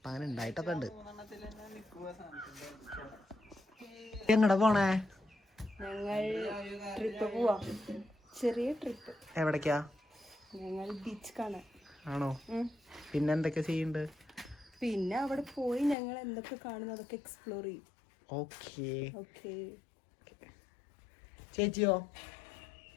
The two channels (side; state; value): right; drops out; at 16.0 s